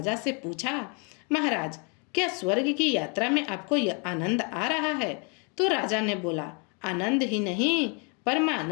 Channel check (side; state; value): right; quieter; 35.4 dB